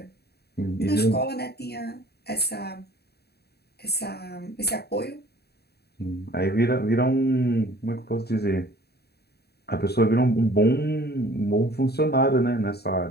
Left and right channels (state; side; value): late; right; 0.47 ms